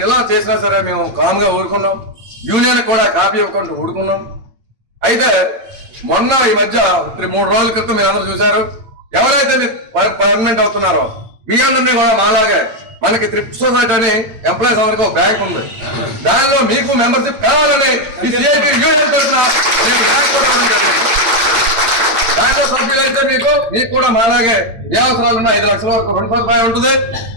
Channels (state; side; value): late; left; 8.9 ms